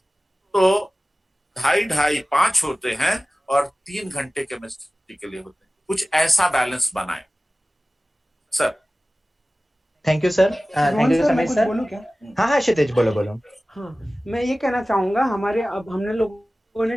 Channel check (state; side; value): normal; both; correlation 0.97